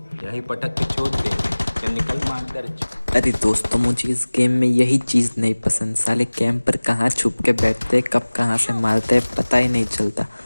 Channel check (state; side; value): inverted; both; correlation -1.00